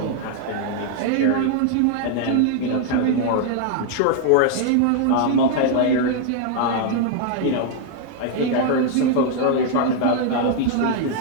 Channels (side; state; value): both; different; correlation 0.00